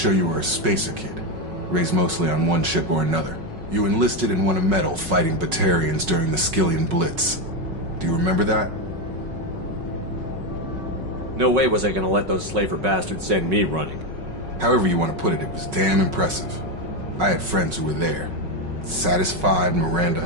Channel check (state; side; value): late; left; 5.4 ms